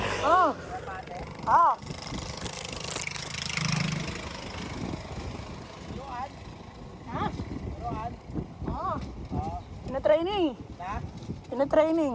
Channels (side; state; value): both; identical; correlation 1.00